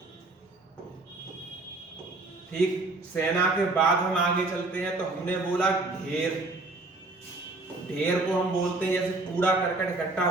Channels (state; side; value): quieter; left; 3.1 dB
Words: ठीक। सेना के बाद हम आगे चलते हैं तो हमने बोला ढेर। ढेर को हम बोलते हैं, जैसे कूड़ा करकट इकट्ठा